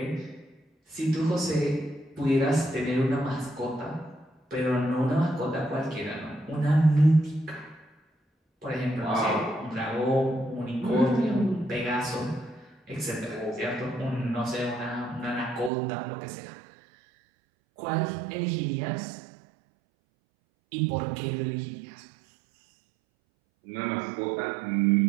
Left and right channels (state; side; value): drops out; left; at 15.7 s